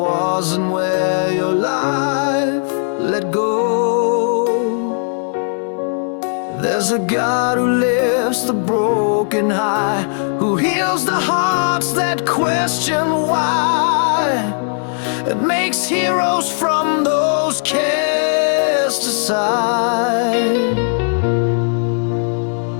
where your life let go. There's a God who lifts the broken high, who heals the hearts that question why, and makes heroes from those cast aside.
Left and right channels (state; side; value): silent; right; 68 dB below the other